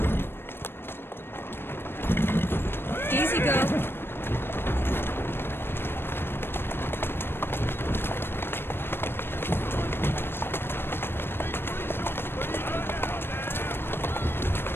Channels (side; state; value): right; late; 0.11 ms